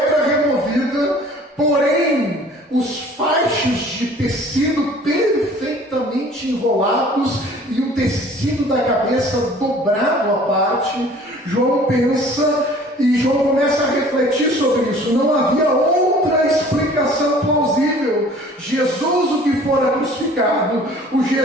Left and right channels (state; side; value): normal; both; correlation 0.50